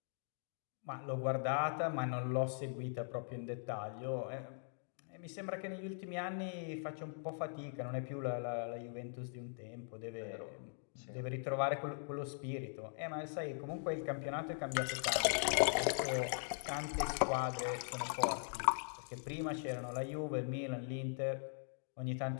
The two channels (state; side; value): silent; right; digital silence